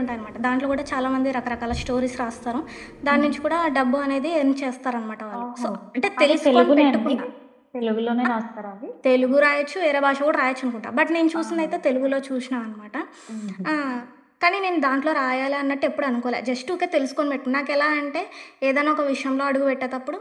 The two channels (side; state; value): both; identical; correlation 1.00